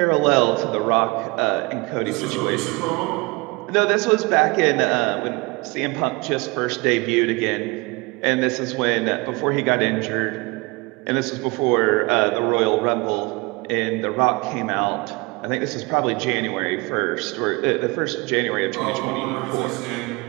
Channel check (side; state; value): left; quieter; 25.8 dB